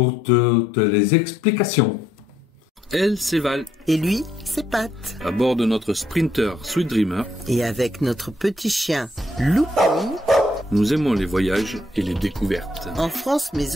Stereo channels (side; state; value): both; normal; correlation 0.72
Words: toutes les explications. Elle, c'est Val, Et lui, c'est Pat. à bord de notre Sprinter Sweet Dreamer. Et avec notre petit chien Loupi, Nous aimons les voyages et les découvertes. en France mais